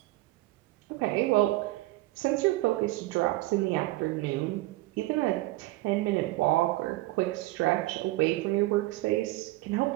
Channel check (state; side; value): quieter; left; 18.8 dB